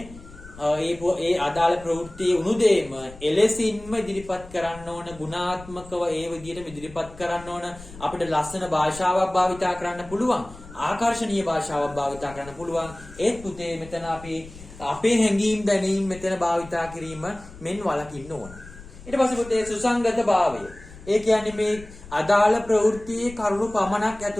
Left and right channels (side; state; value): left; noise; rumble, 18 dB below the sound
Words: ඒ අදාළ ප්‍රවෘත්තියේ උණුදේම එලෙසින්ම ඉදිරිපත් කරන්න ඕන ගුණාත්මකව ඒ විදිහට ඉදිරිපත් කරන්න ඕන අපිට ලස්සන භාෂාවක් භාවිතා කරන්න පුළුවන් ආකර්ශනීය භාෂාවක් භාවිතා කරන්න පුළුවන් ඒත් පුතේ මෙතන අපි අපේ හැඟීම් දැනීම් මෙතන භාවිතා කිරීම මෙන් වළකින්න ඕන ඊට පස්සේ පුතේ සුසංගත භාවය ඒ කියන්නේ මේ අදාළ ප්‍රවෘත්තියේ කරුණු පමණක්